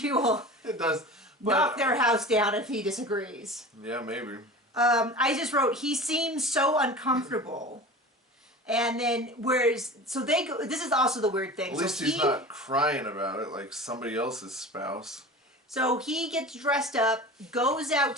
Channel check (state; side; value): normal; both; correlation 0.35